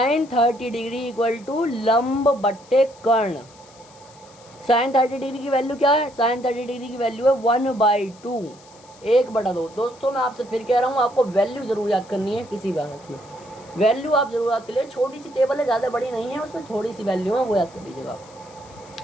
30 degree equal to लंब बट्टे कर्ण। साइन 30 डिग्री की वैल्यू क्या है, साइन 30 डिग्री की वैल्यू है 1/2, 1/2। दोस्तों मैं आपसे फिर कह रहा हूँ, आपको वैल्यू जरूर याद करनी है, किसी भी हालत में वैल्यू आप जरूर याद कर लीजिए। छोटी सी टेबल है, ज़्यादा बड़ी नहीं है, उसमें थोड़ी सी वैल्यू है, वो याद कर लीजिएगा।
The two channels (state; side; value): noise; left; hiss, 25 dB below the sound